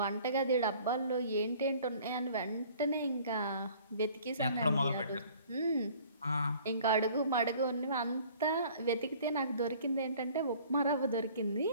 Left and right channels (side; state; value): both; inverted; correlation -0.52